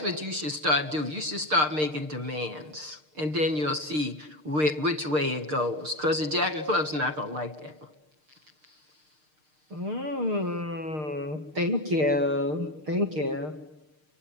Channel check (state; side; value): late; left; 6.6 ms